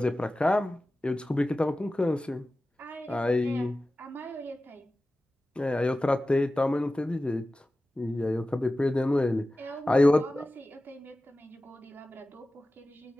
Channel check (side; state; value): both; normal; correlation 0.96